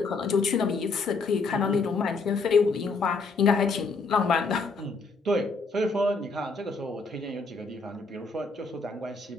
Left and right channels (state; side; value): quieter; right; 4.0 dB